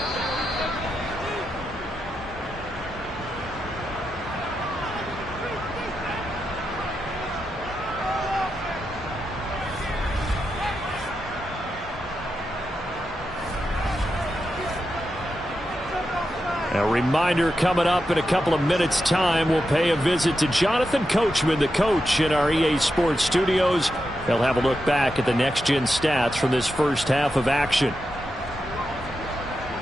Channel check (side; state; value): both; normal; correlation 0.87